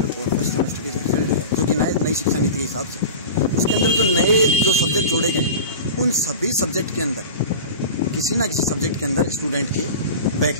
और 1st सेमेस्टर के रिजल्ट है, जो कि नई शिक्षा नीति के हिसाब से उसके अंदर जो नए जो सब्जेक्ट जोड़े गए, उन सभी सब्जेक्ट के अंदर किसी ना किसी सब्जेक्ट के अंदर स्टूडेंट के बैक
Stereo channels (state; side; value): inverted; both; correlation -0.31